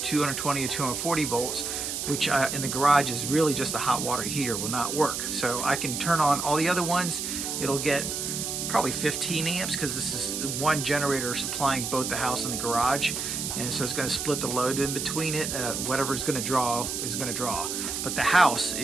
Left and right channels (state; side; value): noise; right; hiss, 3 dB below the sound